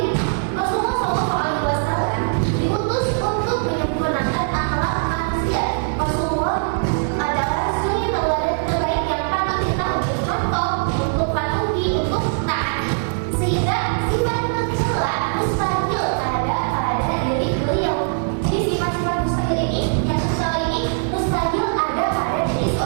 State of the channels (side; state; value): left; silent; digital silence